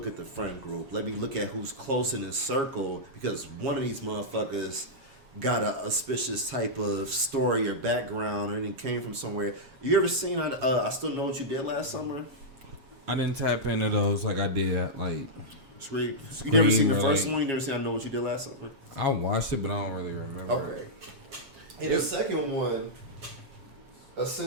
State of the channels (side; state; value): left; late; 7.3 ms